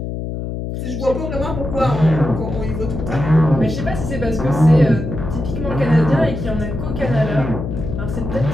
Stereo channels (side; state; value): left; noise; hum, 5 dB below the sound